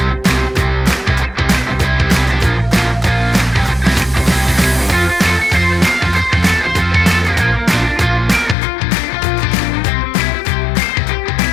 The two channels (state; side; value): drops out; right; at 8.6 s